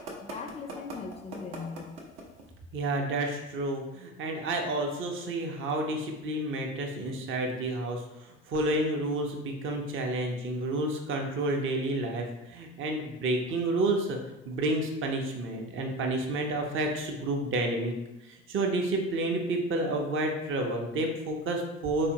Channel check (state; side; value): normal; both; correlation 0.28